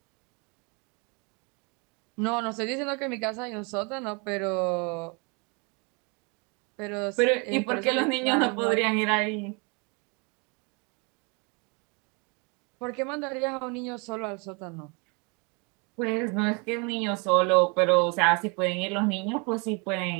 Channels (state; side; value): quieter; left; 31.8 dB